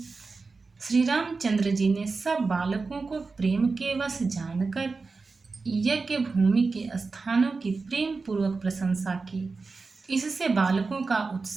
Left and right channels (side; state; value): left; quieter; 4.2 dB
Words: श्री रामचंद्र जी ने सब बालकों को प्रेम के वश जानकर यज्ञ भूमि के स्थानों की प्रेम पूर्वक प्रशंसा की। इससे बालकों का